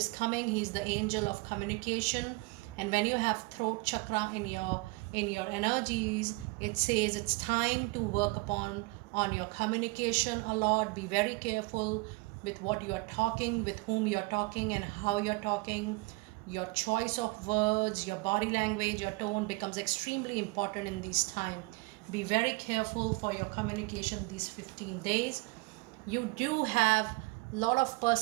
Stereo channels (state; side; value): quieter; left; 26.1 dB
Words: coming, he's the angel of communication. And when you have throat chakra in your energies, it says it's time to work on your communication a lot. Be very careful with what you are talking, with whom you are talking and how you're talking. Your choice of words, your body language, your tone becomes extremely important in this time. Be very careful for your communication these 15 days. You do have a lot of